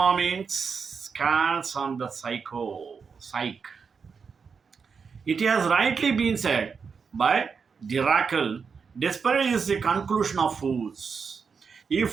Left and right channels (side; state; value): left; quieter; 5.7 dB